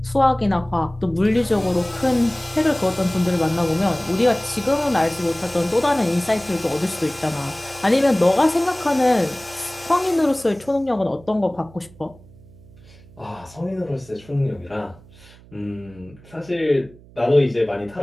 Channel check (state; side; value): noise; right; hum, 23 dB below the sound